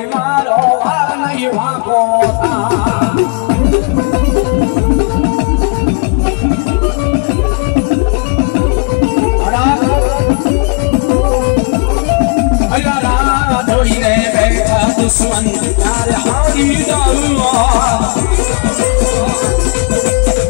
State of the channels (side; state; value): right; quieter; 31.2 dB